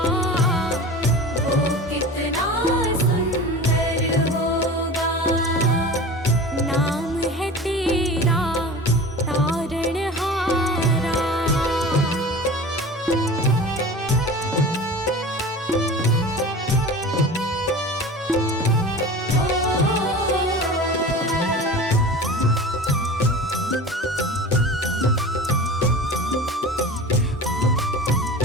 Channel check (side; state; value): both; normal; correlation 0.35